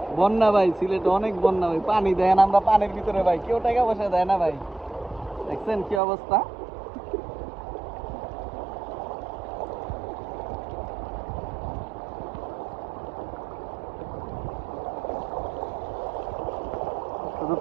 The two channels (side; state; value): left; drops out; at 6.0 s